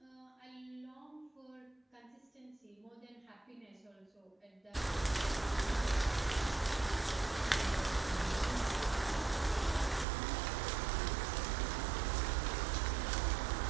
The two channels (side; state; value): left; drops out; at 10.1 s